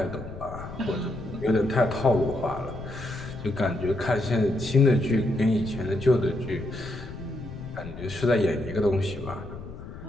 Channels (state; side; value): noise; left; rumble, 12 dB below the sound